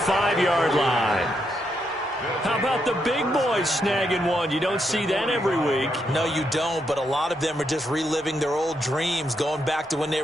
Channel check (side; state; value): both; normal; correlation 0.80